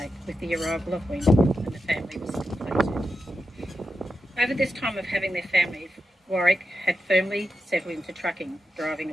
with the arrival of Wendy, and the family was completed. Over this time of having their family, Warwick had firmly settled into trucking, driving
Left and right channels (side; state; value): both; normal; correlation 0.89